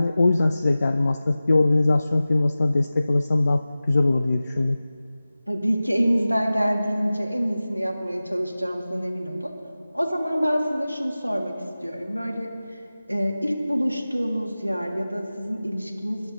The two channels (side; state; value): both; inverted; correlation -0.96